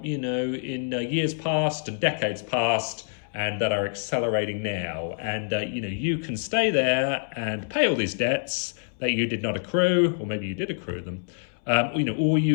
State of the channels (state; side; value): silent; right; 61 dB below the other